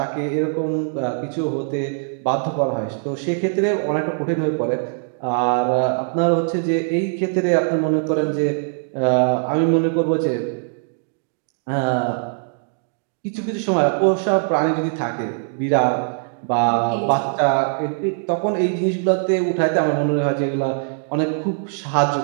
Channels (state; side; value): silent; left; digital silence